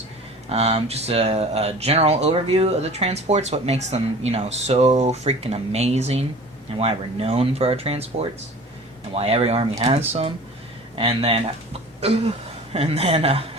Just a general overview of the transports, what makes them, so freaking amazing, and why we're known for our transports, and why every army has some. And then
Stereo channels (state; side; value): normal; both; correlation 0.42